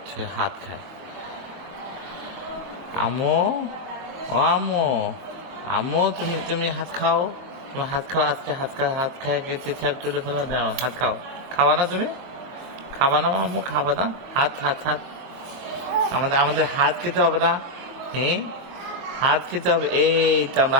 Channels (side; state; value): left; late; 23 ms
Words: হাত খায়। আমো, ও আমো, আমো, তুমি তুমি হাত খাও, তুমি হাত খাও, আজকে হাত খায় চেঁচাপ তুলে ফেলা দাও, হাত খাও। খাওয়া না তুমি? খাবা না আম্মু? খাবা না? হাত হাত হাত, আমাদের আমাদের হাত খেতে হবে না? হ্যাঁ, হাত খেতে হবে। এই তো আমরা